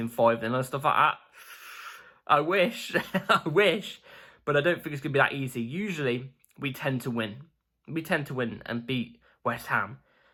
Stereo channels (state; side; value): identical; both; correlation 1.00